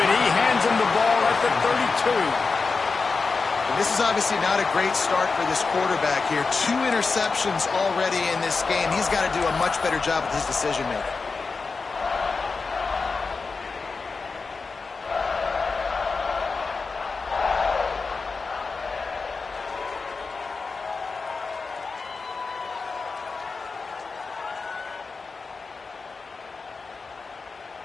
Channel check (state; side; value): quieter; right; 4.4 dB